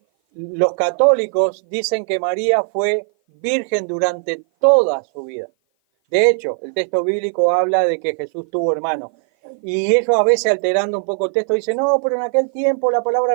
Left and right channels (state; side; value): silent; left; 56 dB below the other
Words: los católicos dicen que María fue virgen durante toda su vida? De hecho, el texto bíblico habla de que Jesús tuvo hermanos. Y ellos a veces, alterando un poco el texto, dicen: no, pero en aquel tiempo la palabra